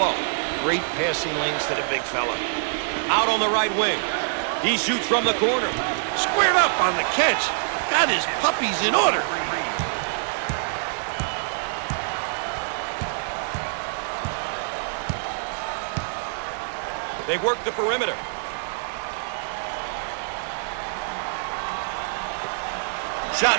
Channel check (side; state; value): left; silent; digital silence